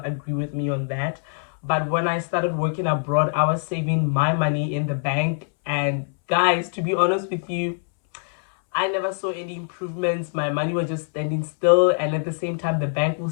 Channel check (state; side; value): silent; right; 63 dB below the other